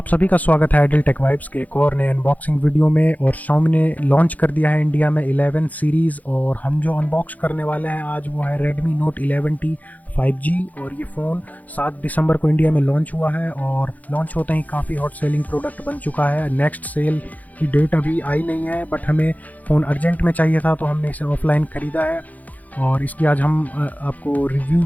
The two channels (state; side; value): late; right; 0.078 ms